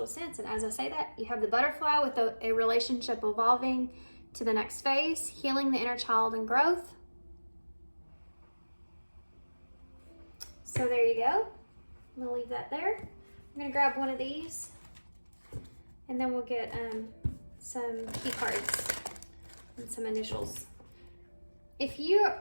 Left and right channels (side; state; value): both; inverted; correlation -1.00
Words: sense. And as I say that, you have the butterfly with a relationship evolving to the next phase, healing the inner child and growth. So there you go. I'm going to leave that there. I'm going to grab one of these. And then we'll get some key cards and some initials. If you